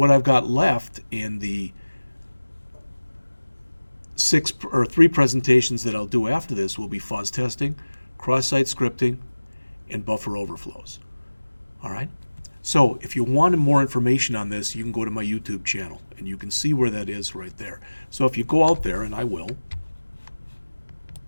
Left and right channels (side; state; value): both; inverted; correlation -1.00